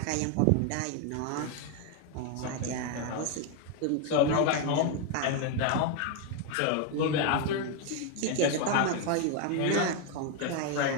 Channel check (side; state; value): both; different; correlation 0.01